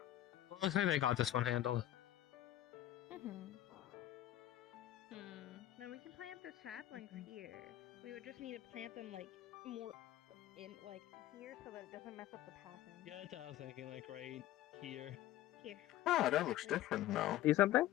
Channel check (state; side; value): quieter; right; 13.6 dB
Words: looks like they got this one handled. Hmm. the saplings here. We would just need to plant them like more in like here so that it doesn't mess up the pattern. Yeah, that's what I was thinking, like right here. Here. Ah, that looks different now. See something?